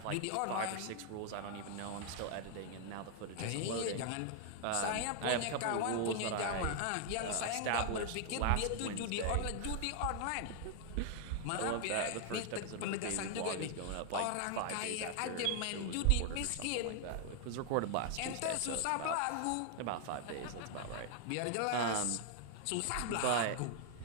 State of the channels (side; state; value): both; different; correlation 0.00